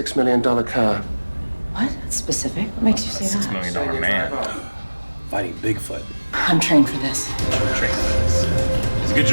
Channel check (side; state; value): both; inverted; correlation -1.00